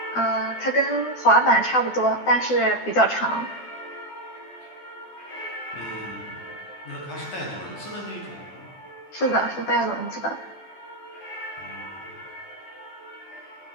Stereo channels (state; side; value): late; right; 12 ms